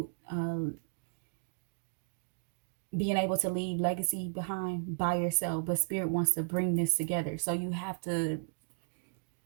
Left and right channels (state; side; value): silent; left; digital silence